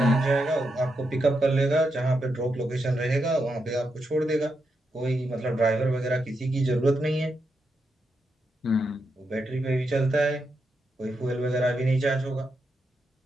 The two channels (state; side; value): normal; both; correlation 0.84